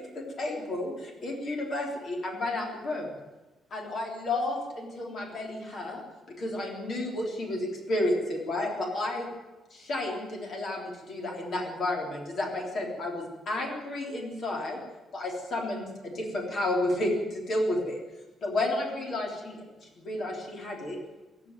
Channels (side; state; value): both; normal; correlation 0.74